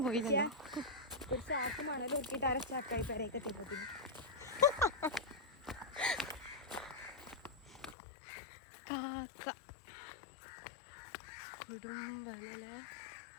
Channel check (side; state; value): right; drops out; at 8.0 s